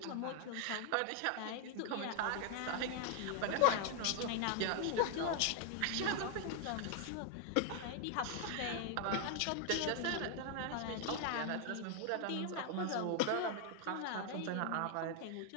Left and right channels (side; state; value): both; different; correlation 0.00